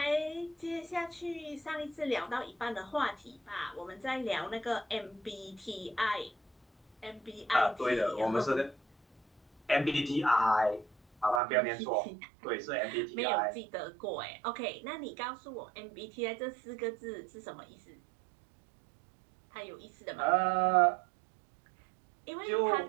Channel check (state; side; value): drops out; left; at 11.4 s